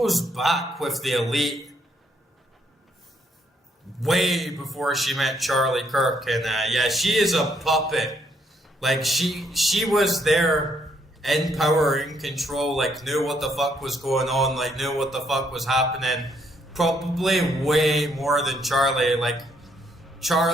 back with the elite way before she met Charlie Kirk. And yeah, she is a puppet. Like, she was there in power, in control, like, knew what the fuck was going on, like, knew what the fuck was happening. Probably way more than Charlie. Like,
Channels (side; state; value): both; normal; correlation 0.72